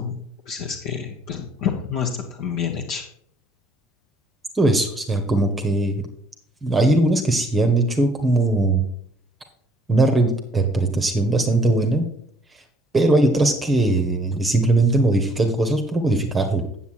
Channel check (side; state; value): both; normal; correlation 0.63